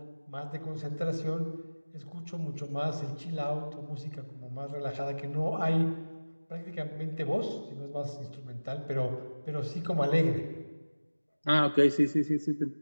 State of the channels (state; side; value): inverted; both; correlation -1.00